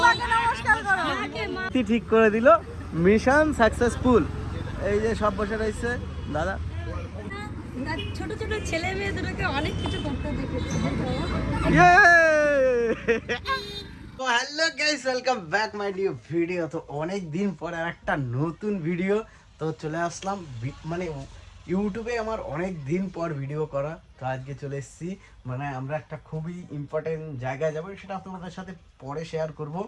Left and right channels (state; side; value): identical; both; correlation 1.00